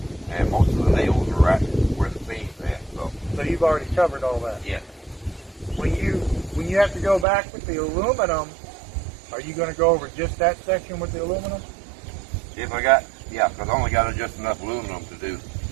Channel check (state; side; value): drops out; left; at 7.2 s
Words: and most of the nails are right where the seams at. So you've already covered all that. Yeah. When you have to go back with the aluminum, are you going to go over just that section with the aluminum? Because I only got just enough aluminum to do